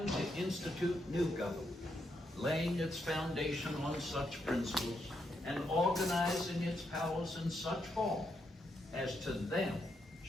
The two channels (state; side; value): normal; both; correlation 0.80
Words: to institute new government, laying its foundation on such principles and organizing its powers in such form as to them